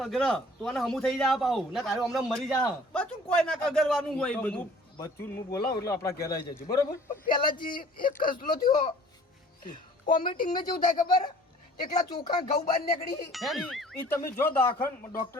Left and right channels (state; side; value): normal; both; correlation 0.52